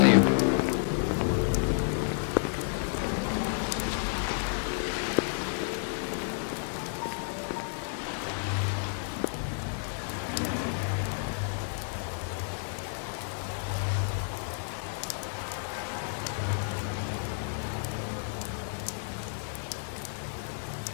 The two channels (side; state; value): right; silent; digital silence